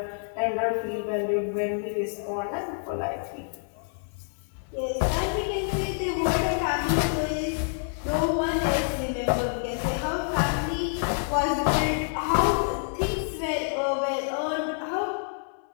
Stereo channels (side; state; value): right; silent; 60 dB below the other